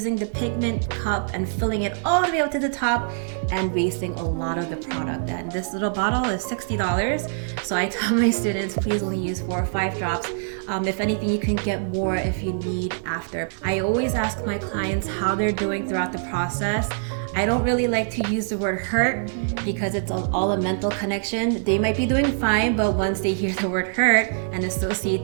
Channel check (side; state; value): left; silent; digital silence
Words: the pigment cup and filling it all the way up to the top and wasting a lot of the product. And this little bottle is $60. So I tell my students, please only use 4 or 5 drops. If anything, you can get more if you need after. I always ask my clients how they're doing throughout the process. I don't really like to use the word hurt because it's all a mental connection. They might be doing fine, but once they hear the word hurt and associate